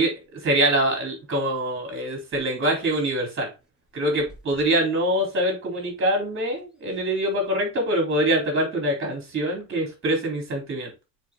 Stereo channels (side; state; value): both; normal; correlation 0.10